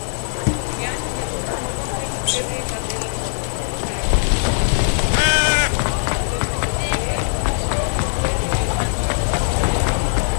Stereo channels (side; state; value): right; silent; digital silence